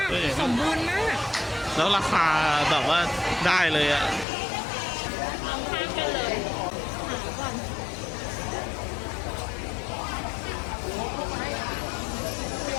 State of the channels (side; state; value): right; drops out; at 4.2 s